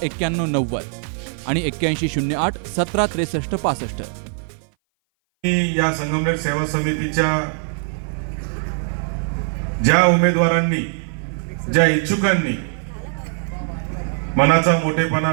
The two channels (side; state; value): left; silent; 58 dB below the other